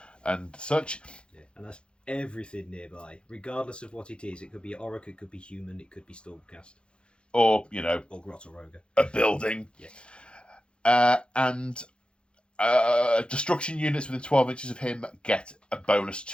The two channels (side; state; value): right; late; 0.055 ms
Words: such. Yeah, and that's everything nearby, regardless of what it is. It could be Orruk, it could be human, it could be Stormcast, or or Grotoroga. A building. Yeah. And destruction units within 12 inches of him get a bonus